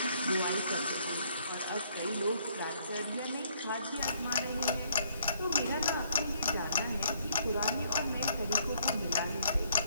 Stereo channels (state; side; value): inverted; both; correlation -0.67